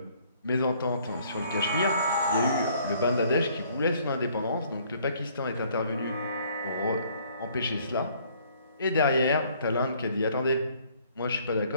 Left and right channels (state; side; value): inverted; both; correlation -0.61